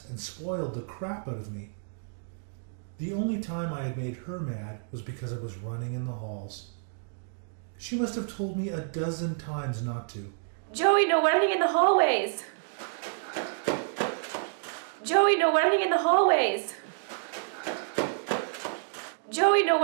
and spoiled the crap out of me. The only time I had made her mad was because I was running in the halls. She must have told me a dozen times not to. Joey, no running in the hallways! Joey, no running in the hallways! Joey, no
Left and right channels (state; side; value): silent; left; digital silence